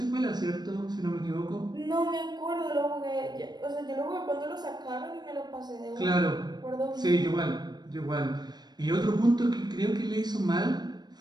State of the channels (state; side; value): late; left; 0.20 ms